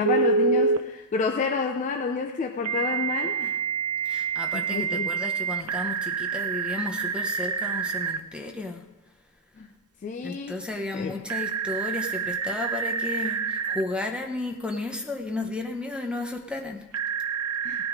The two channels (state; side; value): normal; both; correlation -0.04